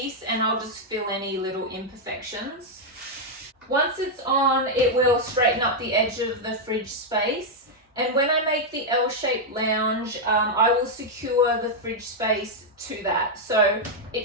and I'll just fill any little imperfections. Once it's on, it will straighten up the edge of the fridge space. And when I make the L-shaped lounge, I will secure the fridge space to that. So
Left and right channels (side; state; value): both; normal; correlation -0.02